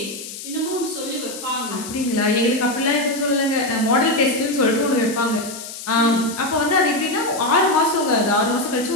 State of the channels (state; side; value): noise; left; hiss, 11 dB below the sound